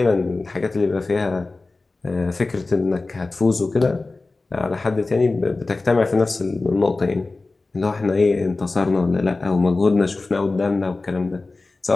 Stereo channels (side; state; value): right; quieter; 3.4 dB